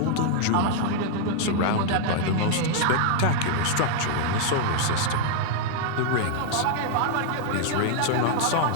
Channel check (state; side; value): different; both; correlation -0.01